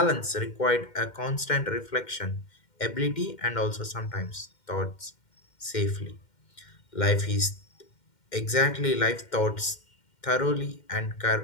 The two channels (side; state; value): right; late; 2.1 ms